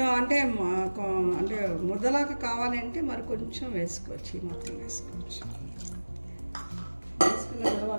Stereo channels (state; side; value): inverted; both; correlation -1.00